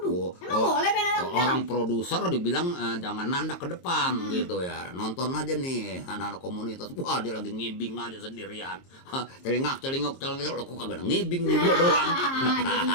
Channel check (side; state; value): right; late; 22 ms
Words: emang boleh main nandak? Orang produser dibilang jangan nandak ke depan gitu ya. Nonton aja nih anak-anak komunitas. Wah, dia lagi ngibing aja sendirian. Celingak, kok kagak ada ngibing nih gua doang.